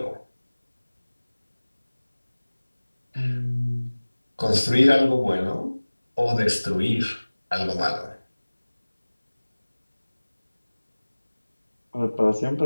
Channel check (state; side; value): inverted; both; correlation -1.00